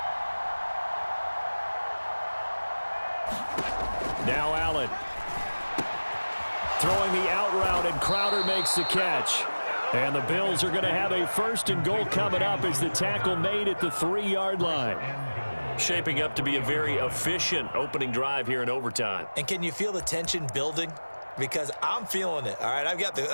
Now Allen. Throwing the out route, and Crowder makes the catch. And the Bills are going to have a first and goal coming up as the tackle made at the 3-yard line. Shaping up to be a very efficient opening drive here in overtime. And can you feel the tension building? Because I'm feeling it. All right, I've got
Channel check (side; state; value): both; inverted; correlation -1.00